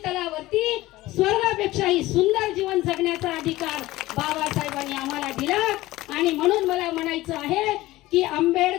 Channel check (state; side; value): quieter; right; 17.7 dB